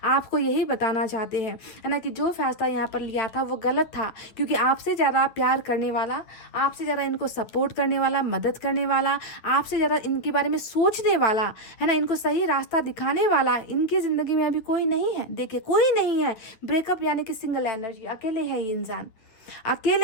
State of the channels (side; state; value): right; late; 9.7 ms